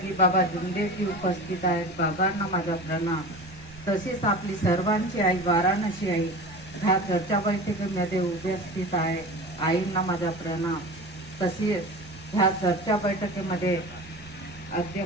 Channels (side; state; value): both; normal; correlation 0.33